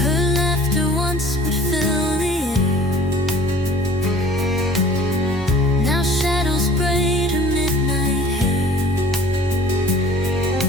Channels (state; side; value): normal; both; correlation 0.50